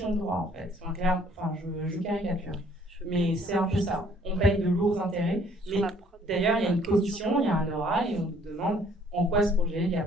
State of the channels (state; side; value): normal; both; correlation 0.60